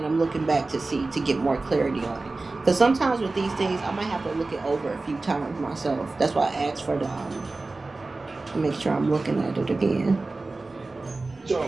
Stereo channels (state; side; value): quieter; left; 3.4 dB